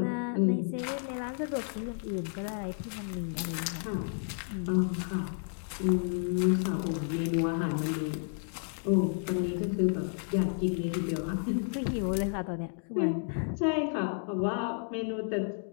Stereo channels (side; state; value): right; silent; 57 dB below the other